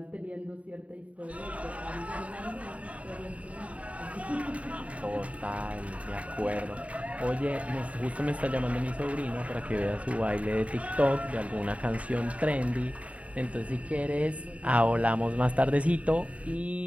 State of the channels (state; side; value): late; left; 0.066 ms